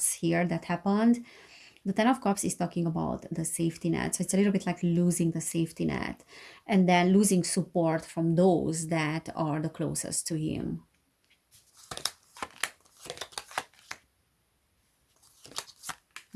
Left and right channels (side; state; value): both; identical; correlation 1.00